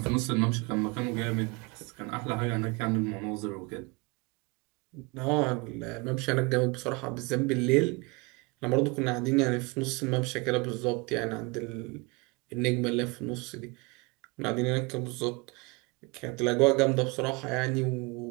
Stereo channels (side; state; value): left; quieter; 27.7 dB